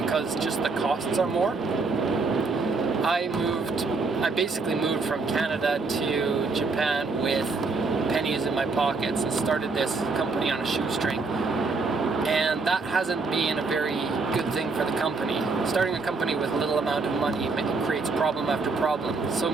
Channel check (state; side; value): quieter; left; 4.0 dB